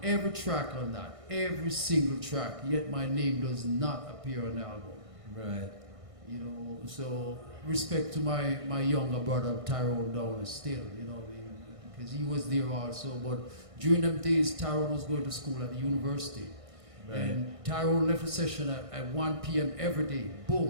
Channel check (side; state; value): left; late; 1.6 ms